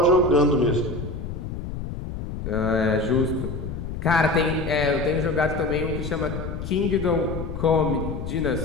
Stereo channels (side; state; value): left; noise; rumble, 7 dB below the sound